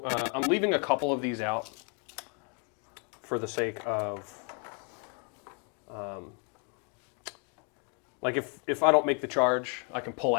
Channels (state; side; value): quieter; right; 37.2 dB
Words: I'm leaving a couple of these out for the sake of, like if I don't make the charge, I can pull